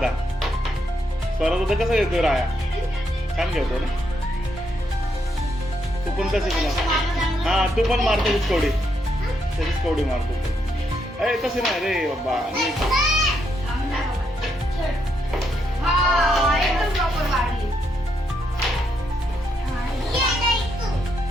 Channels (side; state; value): both; normal; correlation 0.78